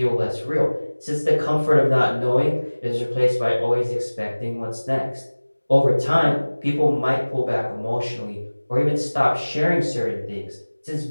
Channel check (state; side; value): inverted; both; correlation -1.00